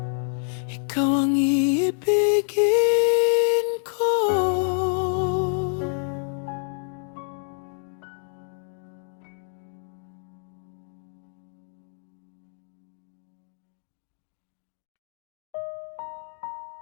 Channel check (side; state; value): right; silent; 60 dB below the other